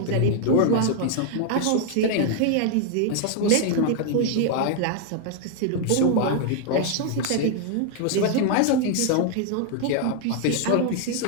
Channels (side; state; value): both; different; correlation 0.00